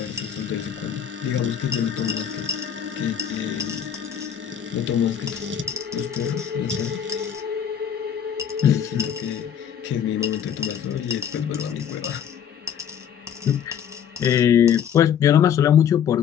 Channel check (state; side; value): quieter; right; 8.7 dB